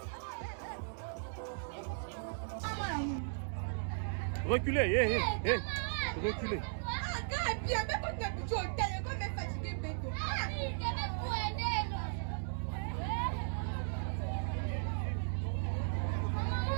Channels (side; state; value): left; silent; digital silence